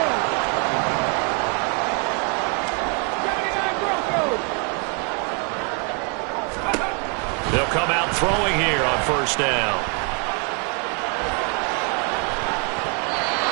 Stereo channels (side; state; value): left; quieter; 37.7 dB